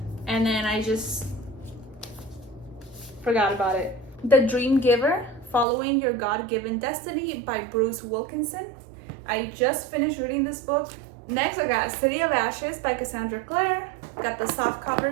and then I just forgot about it. The Dream Giver, Following Your God-Given Destiny by Bruce Wilkinson. I just finished reading this book. Next, I got City of Ashes by Cassandra Clare. Got the soft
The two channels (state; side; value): drops out; left; at 5.7 s